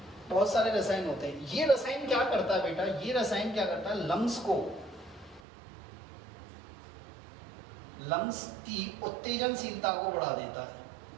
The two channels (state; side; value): drops out; left; at 5.4 s